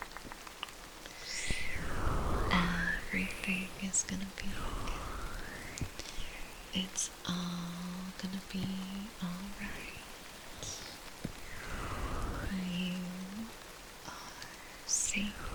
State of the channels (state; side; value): identical; both; correlation 1.00